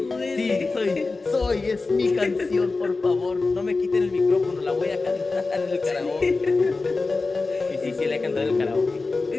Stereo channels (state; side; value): quieter; right; 3.8 dB